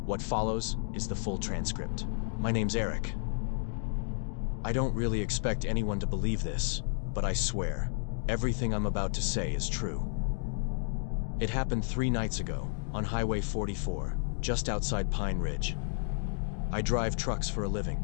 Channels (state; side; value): silent; right; digital silence